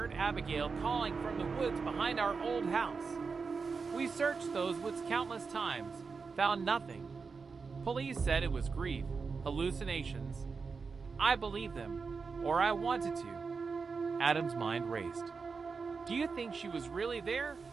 Abigail calling from the woods behind our old house. We searched those woods countless times, found nothing. Police said it was grief, hallucinations. I believed them, or I wanted to." Adam's mind raced. "Do you think she was really there?"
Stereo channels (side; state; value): left; quieter; 5.0 dB